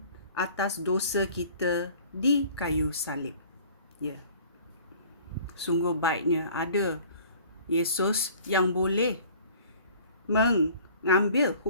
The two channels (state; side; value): inverted; both; correlation -0.49